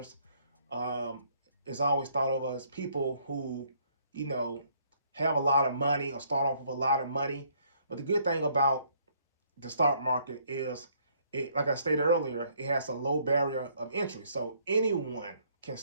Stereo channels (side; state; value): both; inverted; correlation -0.65